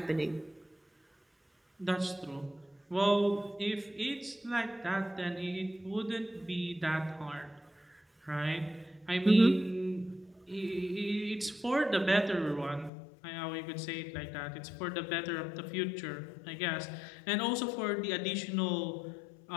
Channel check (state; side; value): drops out; right; at 12.9 s